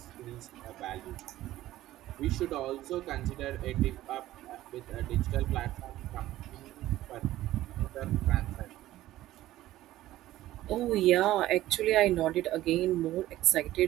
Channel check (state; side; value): quieter; left; 15.0 dB